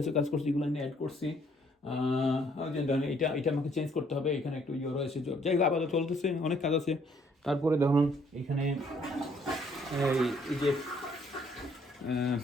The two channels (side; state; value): both; normal; correlation 0.65